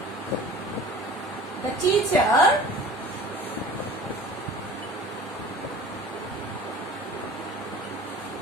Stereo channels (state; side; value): normal; both; correlation 0.42